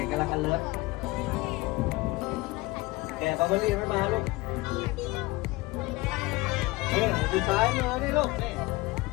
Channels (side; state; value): right; quieter; 21.4 dB